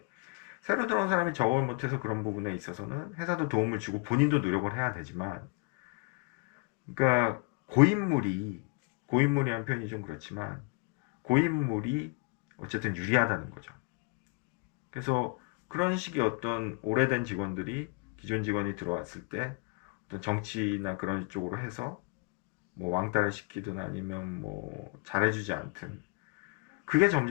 새로 들어온 사람이 적응을 못해서 그런 부분에 있어서는 회사도 도움을 주고 본인도 노력을 해야 되지만 그러니까 고인물이란 표현이 좀 그렇지만 고인물이 어쨌든 유리하다는 거죠. 그래서 그런 식의 어떤 오래된 직원들이 기존 직원이 들어왔을 때 어떤 정치나 그런 쪽으로 해서 뭐 왕따를 시키든 아니면 뭐 잘해주지 않든 그게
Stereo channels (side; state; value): right; quieter; 32.2 dB